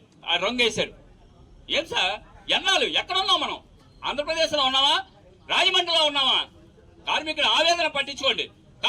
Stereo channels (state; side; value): identical; both; correlation 1.00